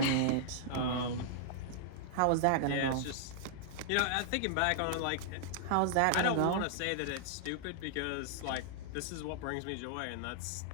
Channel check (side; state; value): both; different; correlation -0.01